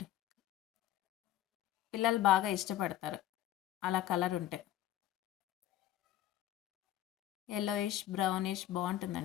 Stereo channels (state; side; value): quieter; right; 12.8 dB